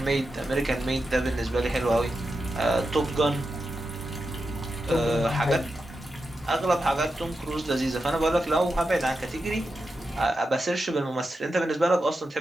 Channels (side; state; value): both; normal; correlation 0.89